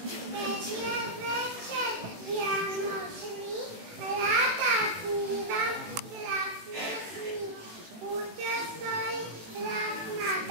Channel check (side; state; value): left; late; 19 ms